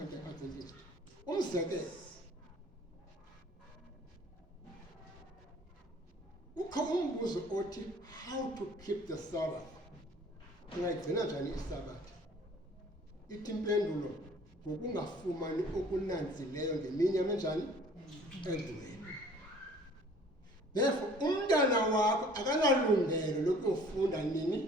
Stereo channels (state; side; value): normal; both; correlation 0.52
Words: Umzekelo, ukho umbuzo othi how to keep the Sabbath. Ungayigcina njani isabath? Ithi impendulo ngokungafumani okunanzileyo ngemini yamenjani endlweni. Therefore umntana wakho akanalungelo lokuyofunda